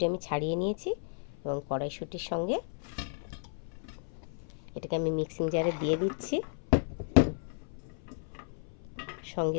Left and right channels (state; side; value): silent; right; 56 dB below the other